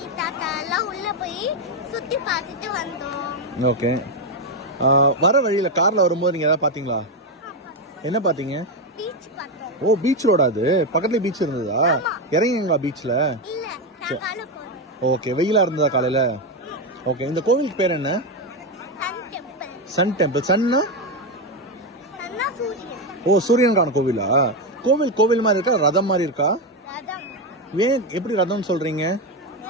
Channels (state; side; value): normal; both; correlation 0.09